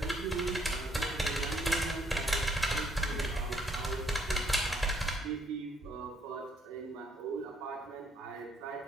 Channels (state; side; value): normal; both; correlation 0.68